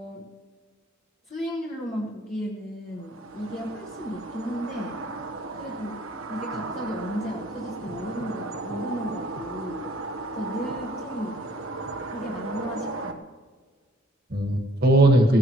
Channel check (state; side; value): normal; both; correlation 0.59